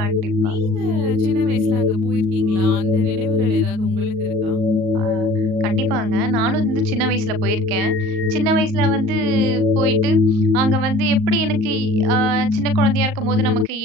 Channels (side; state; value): left; late; 38 ms